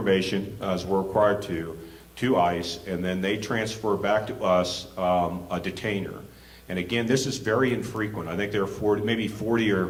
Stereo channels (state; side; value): identical; both; correlation 1.00